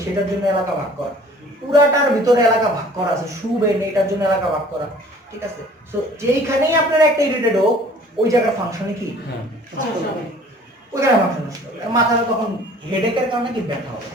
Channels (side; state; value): both; normal; correlation 0.51